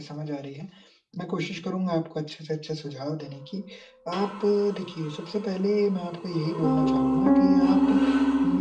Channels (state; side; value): identical; both; correlation 1.00